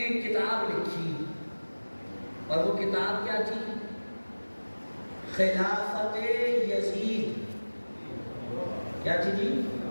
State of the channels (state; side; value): inverted; both; correlation -1.00